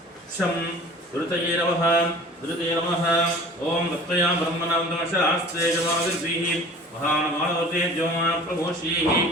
शं दुरितये नमः ओम भक्तया ब्रह्मणां नमशास्ते जमादिर्भिः महानुभावते ज्योमा प्रभोषीः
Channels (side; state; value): both; normal; correlation 0.44